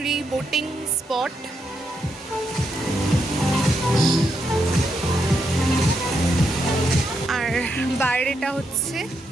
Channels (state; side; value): normal; both; correlation 0.81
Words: বোটিং স্পট। আর বাইরেটা হচ্ছে